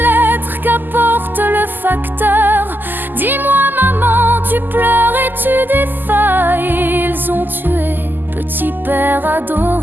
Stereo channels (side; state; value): left; late; 0.090 ms